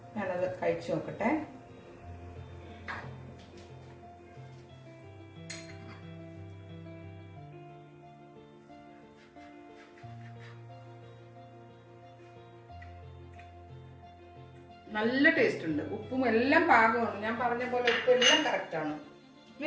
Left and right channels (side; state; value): both; identical; correlation 1.00